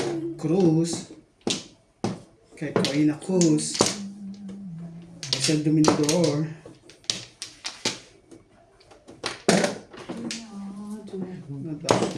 Cruz. Kay Koina Cruz. Isel Dominador.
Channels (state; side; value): identical; both; correlation 1.00